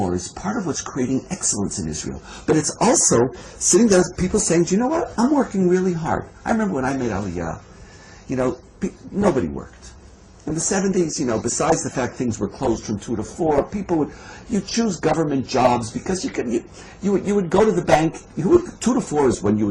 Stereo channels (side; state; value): both; identical; correlation 1.00